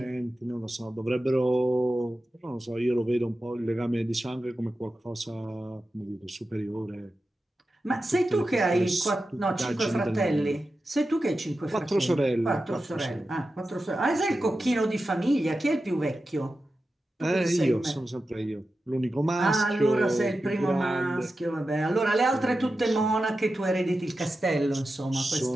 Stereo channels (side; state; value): both; normal; correlation 0.92